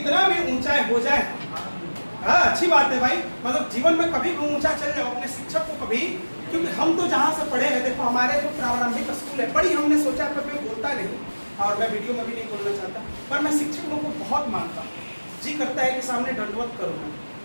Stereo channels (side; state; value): both; inverted; correlation -1.00